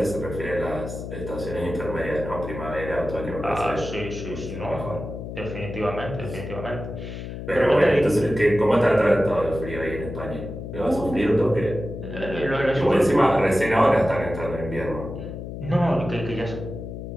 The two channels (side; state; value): left; noise; hum, 8 dB below the sound